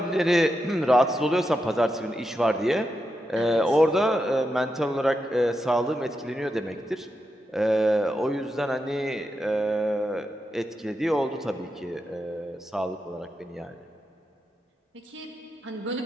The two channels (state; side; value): normal; both; correlation 0.86